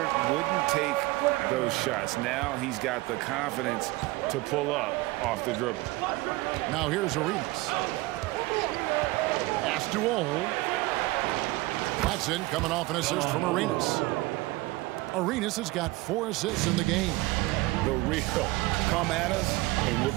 wouldn't take those shots. Now he's got the confidence to pull up off the dribble. Now here's Arenas. Pass to Ole. Watson coming off an assist from Arenas. Arenas has got 4 assists in the game. The real come at us, and we're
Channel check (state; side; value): quieter; left; 20.5 dB